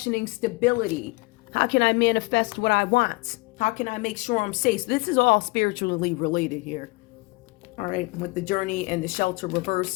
stability. How can I manifest what I want? How can I make sure I'm safe? So this is all spiritually related here. All right, with the journey and the shelter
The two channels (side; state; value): right; quieter; 24.4 dB